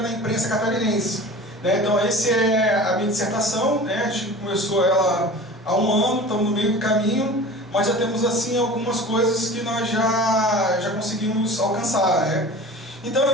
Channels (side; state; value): both; normal; correlation 0.38